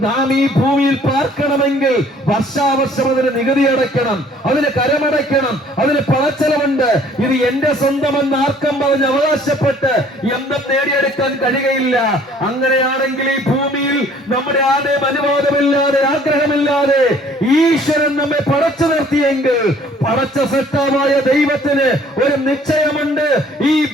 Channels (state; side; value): normal; both; correlation 0.56